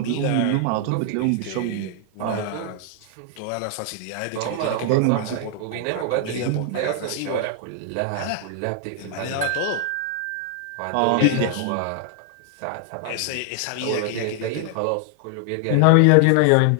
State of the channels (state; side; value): different; both; correlation 0.00